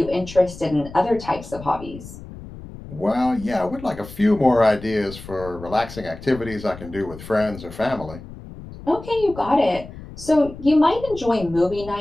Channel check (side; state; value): left; noise; rumble, 15 dB below the sound